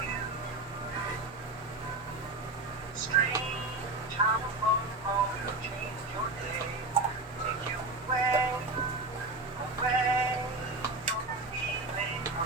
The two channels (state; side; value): quieter; left; 3.0 dB